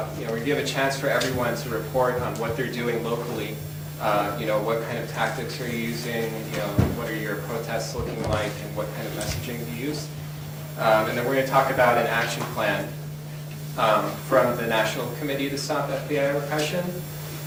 we're going to give a chance for everyone to report on what they're doing locally. What kind of tactics are you using? What are your protests looking like, and what kind of messaging do you use? And then we're going to talk about an action plan from the National Committee to Stop FBI Repression.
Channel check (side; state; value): both; identical; correlation 1.00